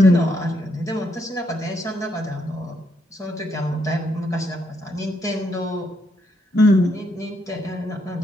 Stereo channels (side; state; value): both; normal; correlation 0.76